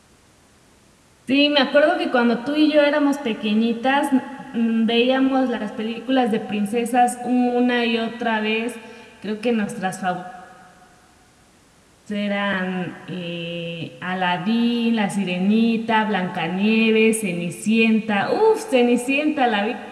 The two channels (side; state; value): both; identical; correlation 1.00